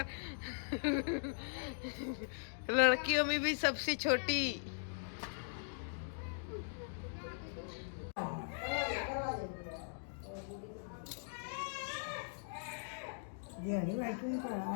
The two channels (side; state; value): right; silent; digital silence